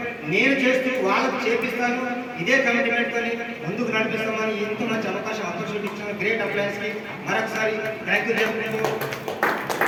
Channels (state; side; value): identical; both; correlation 1.00